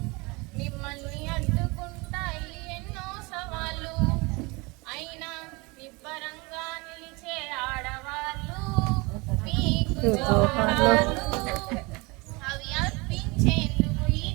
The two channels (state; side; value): quieter; left; 26.2 dB